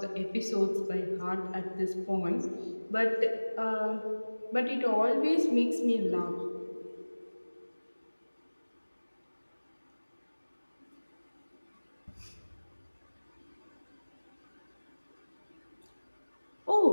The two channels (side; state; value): both; inverted; correlation -1.00